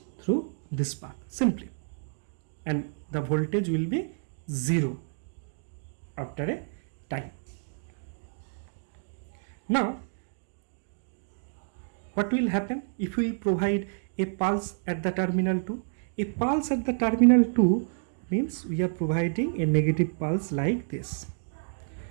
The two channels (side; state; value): left; silent; digital silence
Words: through this path simply, and the voltage will be 0 after a time. Now what will happen if we provide a pulse at the terminal 2? A pulse at the terminal 2 means we are providing a negative pulse like this.